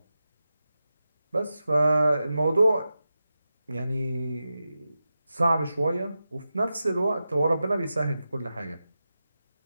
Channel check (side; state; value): both; inverted; correlation -0.92